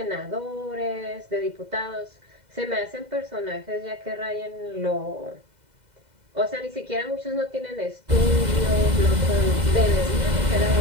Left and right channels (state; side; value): late; left; 2.0 ms